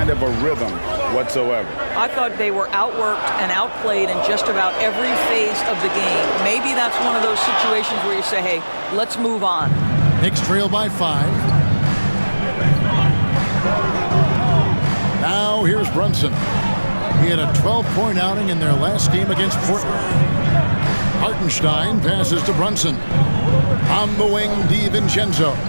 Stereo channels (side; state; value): both; inverted; correlation -1.00